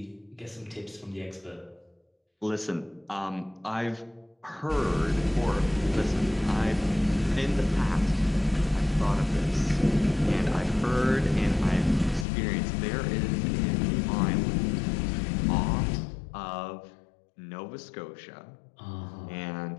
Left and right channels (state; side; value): drops out; right; at 12.2 s